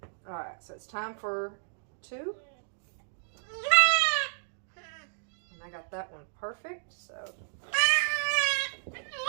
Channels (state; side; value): silent; left; digital silence